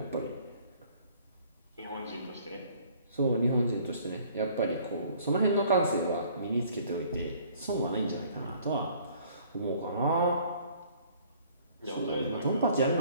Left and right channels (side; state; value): both; inverted; correlation -0.56